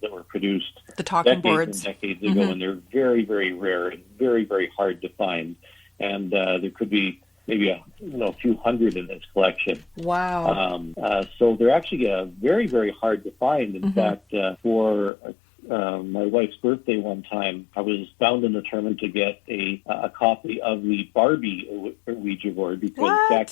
that were produced the talking boards decades ago, and they're very, very rare and very, very hard to find. And there could be maybe a few hundred in his collection. Wow. So they're actually very, very hard to find. In fact, for my wife's birthday one time, I was bound and determined to get a copy of the Barbie Ouija board, because back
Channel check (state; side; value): drops out; right; at 15.1 s